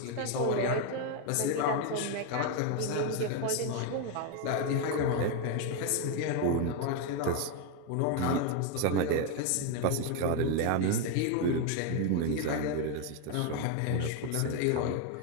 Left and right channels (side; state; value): both; different; correlation 0.01